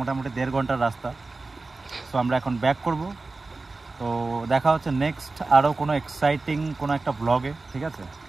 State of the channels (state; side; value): quieter; left; 3.5 dB